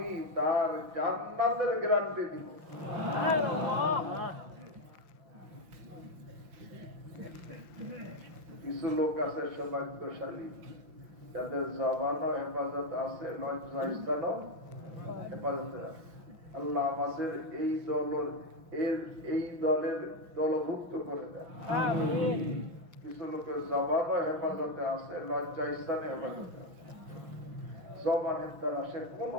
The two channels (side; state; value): left; late; 5.8 ms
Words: তার জান্নাতের গ্যারান্টি দিব। সুবহানাল্লাহ। কিছু লোক আছে সৌভাগ্যশালী, যাদের জবানও হেফাজত আছে, লজ্জা স্থানও হেফাজতে আছে। আল্লাহ আমাদের এই দলের দলভুক্ত করে দেন। আমিন। কিছু লোকের জবানও হেফাজতে আছে, লজ্জা স্থানে হেফাজতে আছে। জবানের দ্বারা সে কোনো